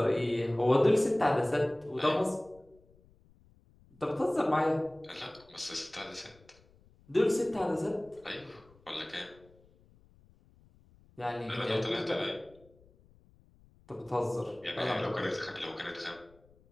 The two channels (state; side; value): noise; left; rumble, 28 dB below the sound